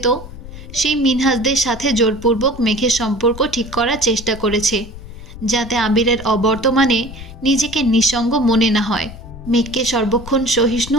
সেই মিনহাজদের সাথে জোরপূর্বক মেঘের সম্পর্ক ঠিক করার চেষ্টা করেছে, যাতে আবিরের অবর্তমানে নিজেকে নিঃসঙ্গ মনে না হয়। মেঘকে সর্বক্ষণ সহিষ্ণু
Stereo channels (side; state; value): left; noise; rumble, 14 dB below the sound